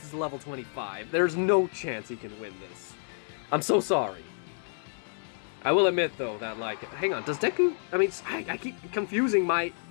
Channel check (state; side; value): silent; right; 58 dB below the other